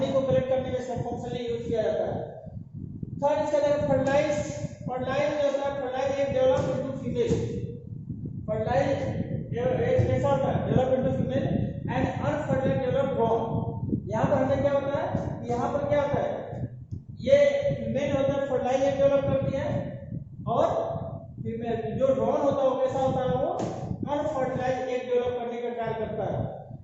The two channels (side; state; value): both; identical; correlation 1.00